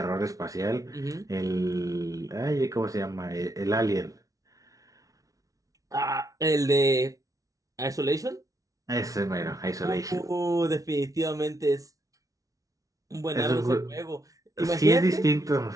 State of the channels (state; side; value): late; left; 0.17 ms